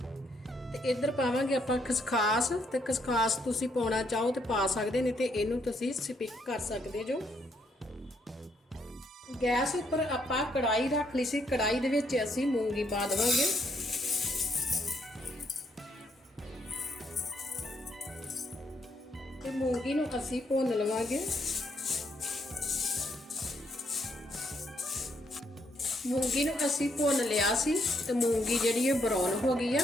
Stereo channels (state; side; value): normal; both; correlation 0.74